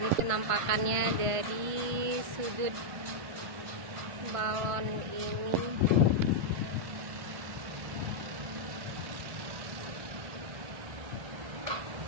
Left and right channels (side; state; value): left; late; 1.5 ms